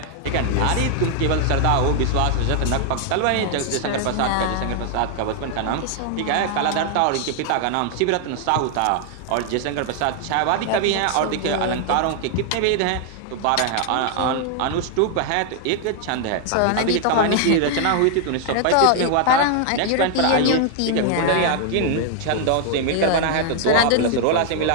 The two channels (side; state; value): both; different; correlation 0.00